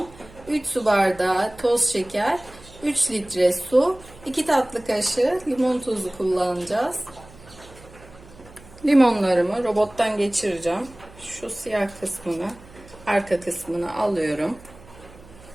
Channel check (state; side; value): noise; right; hum, 21 dB below the sound